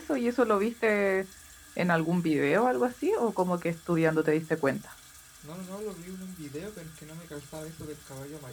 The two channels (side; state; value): both; identical; correlation 1.00